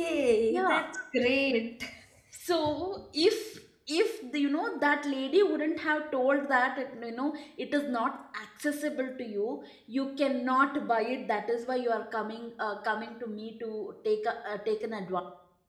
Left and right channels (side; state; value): both; identical; correlation 1.00